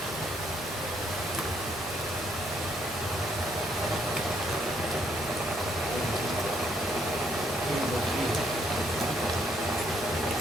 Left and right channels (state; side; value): normal; both; correlation 0.70